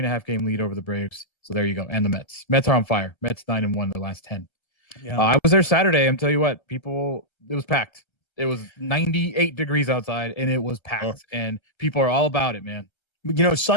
lead over the Braves. So there you go. And the Mets. Mets are on fire. Mets 9-1 the last 10. Yeah. I was there Saturday. I'm telling you what, it was packed. It was 98 degrees outside, and it was packed. And people are all about it, man. You know,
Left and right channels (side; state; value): right; late; 1.3 ms